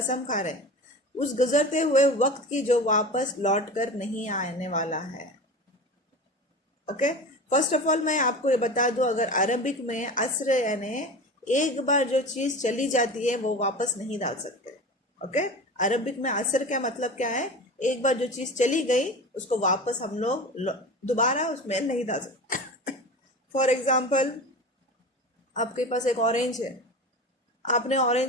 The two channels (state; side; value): normal; both; correlation 0.32